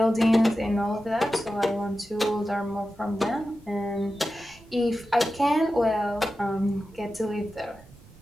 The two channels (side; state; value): right; noise; rumble, 24 dB below the sound